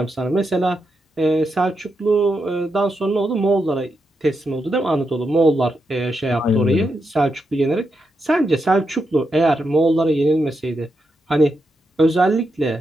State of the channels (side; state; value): both; normal; correlation 0.84